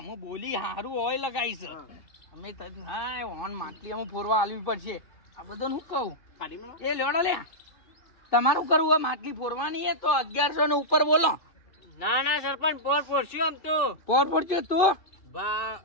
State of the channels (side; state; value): right; late; 2.6 ms